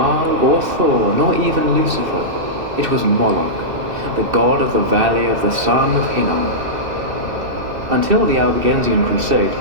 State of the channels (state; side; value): late; left; 2.7 ms